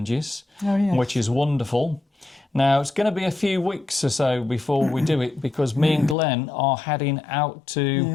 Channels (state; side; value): drops out; right; at 6.2 s